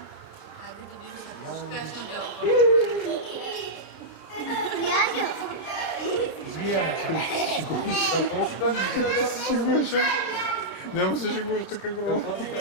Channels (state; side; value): late; right; 29 ms